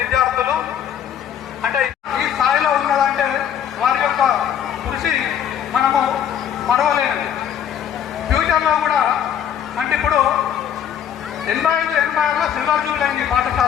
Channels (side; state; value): right; quieter; 9.3 dB